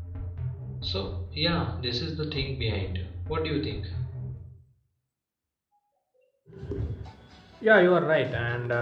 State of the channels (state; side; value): identical; both; correlation 1.00